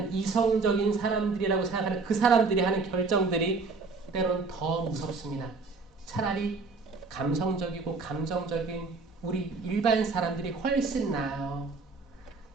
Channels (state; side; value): quieter; left; 4.2 dB